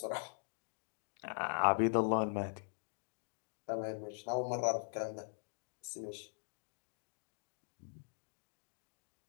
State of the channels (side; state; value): right; silent; digital silence